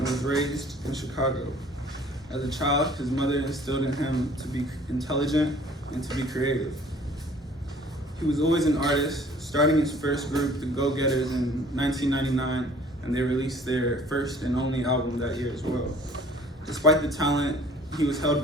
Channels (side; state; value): both; normal; correlation 0.53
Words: raised in Chicago. As a child, his mother instilled in him to be intelligent and to be creative. He was always an artist, starting his first group, the Go-Getters, in 1999, and they released their first and only album that year as well. Despite the talent, he was held